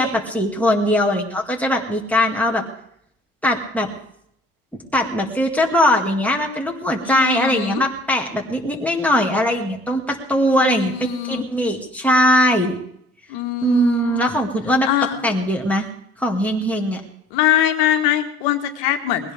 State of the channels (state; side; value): normal; both; correlation 0.54